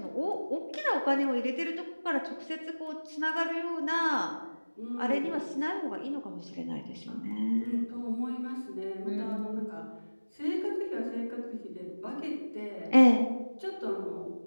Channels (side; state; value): both; inverted; correlation -1.00